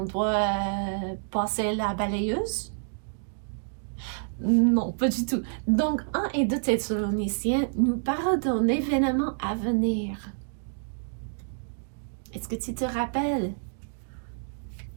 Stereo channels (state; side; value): silent; left; digital silence